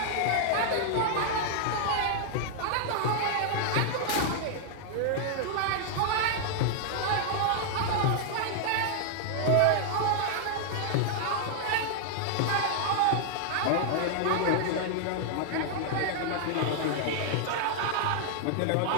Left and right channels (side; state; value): both; different; correlation 0.00